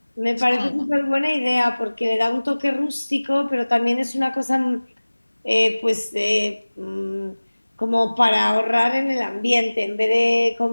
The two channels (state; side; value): inverted; both; correlation -1.00